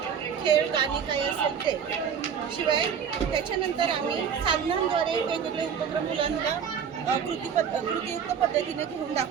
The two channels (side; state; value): left; quieter; 7.5 dB